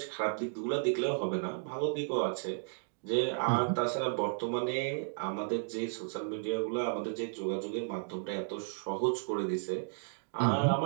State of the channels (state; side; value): silent; left; digital silence